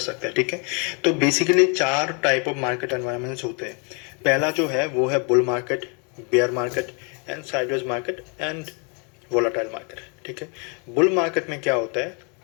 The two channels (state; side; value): quieter; right; 35.5 dB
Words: हैं। ठीक है, तो basically 4 type of market environments होते हैं। पहला जो है वो है bull market, bear market and sideways market and volatile market. ठीक है, बुल मार्केट में क्या होता है,